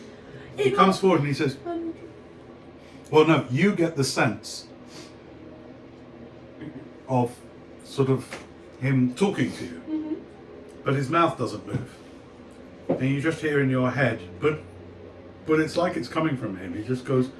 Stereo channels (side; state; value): both; identical; correlation 1.00